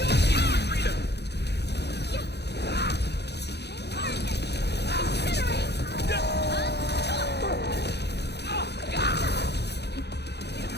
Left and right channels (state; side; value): late; right; 0.49 ms